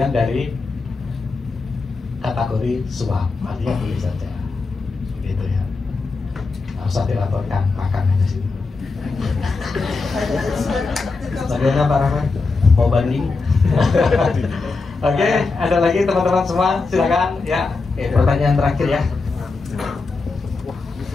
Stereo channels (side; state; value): right; quieter; 4.0 dB